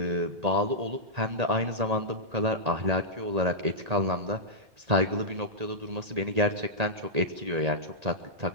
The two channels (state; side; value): late; left; 1.8 ms